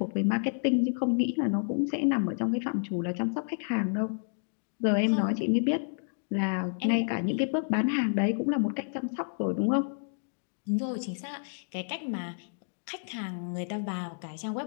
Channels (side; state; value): right; silent; digital silence